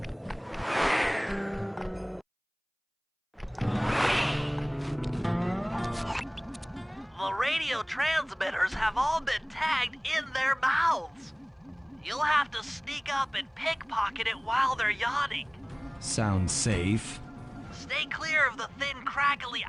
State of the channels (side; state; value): both; identical; correlation 1.00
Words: The radio transmitters have all been tagged in their mouths. You'll have to sneak up and pickpocket it while they're yawning. Sounds safe. Stay clear of the thin, crackly